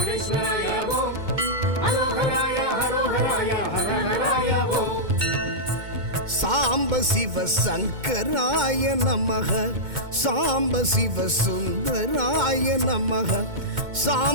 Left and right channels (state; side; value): late; left; 2.2 ms